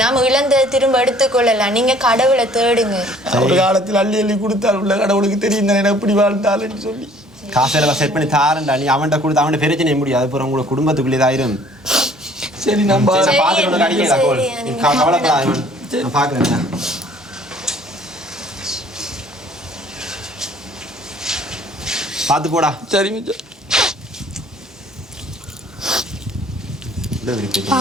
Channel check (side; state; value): both; normal; correlation 0.56